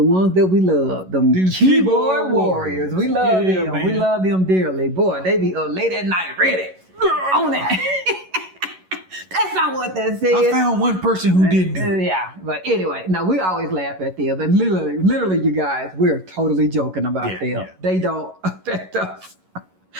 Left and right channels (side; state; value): left; late; 11 ms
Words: ones that we love. Them These keyboard keyboard warriors. warriors. We love Yeah, them. man. We love them dearly. Boy, they be up late at night ready. On that. That's not what that says. I found one person who didn't do it. Yeah, but anyway, no, we always laugh at them. And literally, you guys, we're totally joking about Yeah, them. yeah. They don't affect us